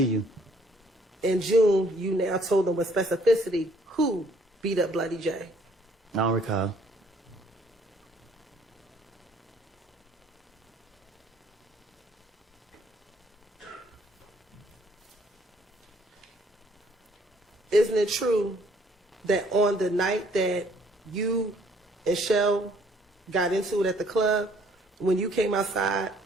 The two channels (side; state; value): both; normal; correlation 0.62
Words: you. In June, you now told them with specificity who beat up Bloody J. I don't recall. Isn't it true that on the night that you and Shell got into it at the club, when you came outside